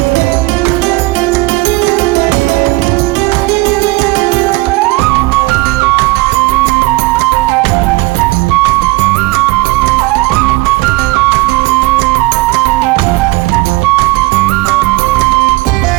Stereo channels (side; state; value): left; quieter; 22.5 dB